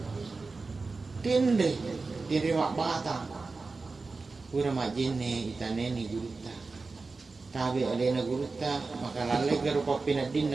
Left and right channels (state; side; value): quieter; left; 4.0 dB